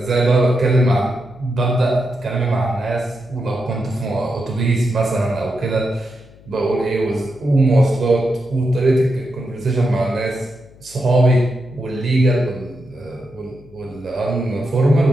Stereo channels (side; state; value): left; noise; hum, 24 dB below the sound